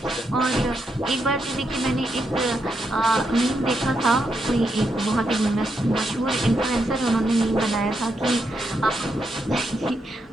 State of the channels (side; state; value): both; normal; correlation 0.82